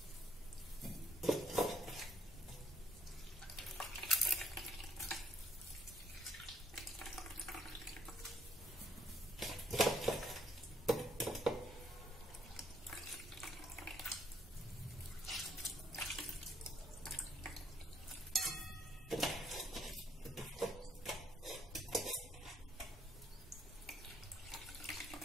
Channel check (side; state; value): both; normal; correlation 0.66